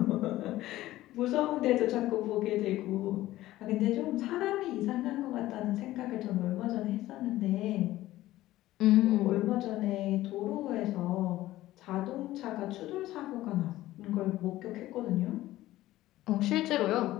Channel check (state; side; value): quieter; right; 15.8 dB